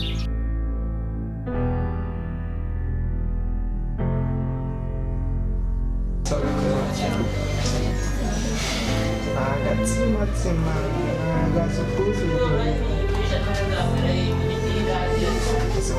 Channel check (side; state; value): both; identical; correlation 1.00